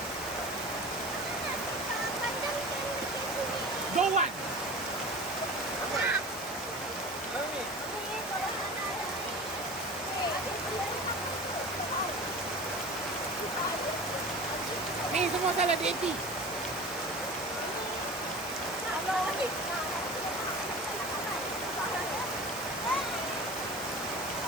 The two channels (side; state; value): both; normal; correlation 0.35